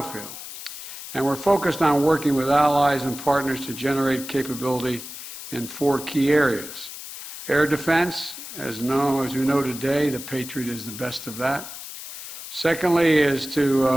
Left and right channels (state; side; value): noise; left; hiss, 11 dB below the sound